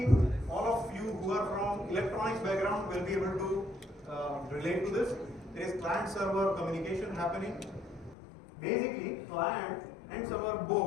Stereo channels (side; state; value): right; drops out; at 8.2 s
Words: all of you who are from electronics background will be able to relate to this. There is client-server communication happening. Basically, client and server